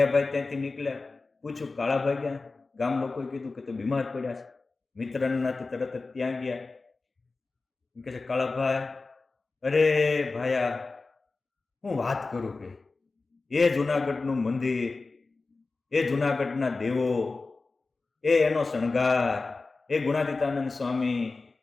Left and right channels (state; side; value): quieter; right; 3.7 dB